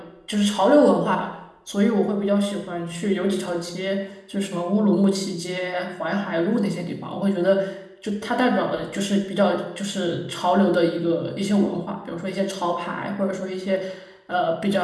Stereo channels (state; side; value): identical; both; correlation 1.00